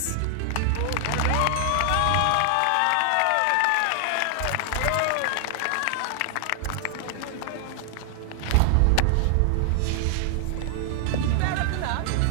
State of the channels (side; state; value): both; different; correlation 0.00